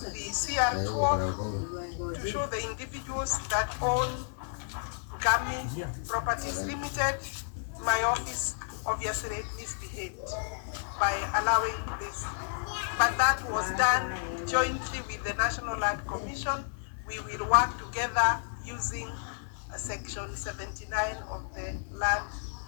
the CR12 to show the individuals that own GAMI Properties Limited. My office obviously misbehaved by allowing this, but that was done jointly with the National Land Commission. We will work together using section 79 of the Land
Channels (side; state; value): right; silent; digital silence